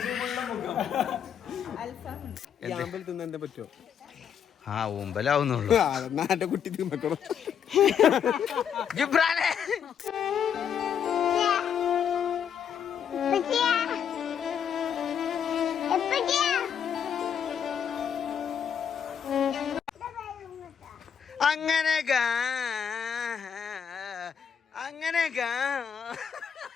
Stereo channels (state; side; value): quieter; right; 8.0 dB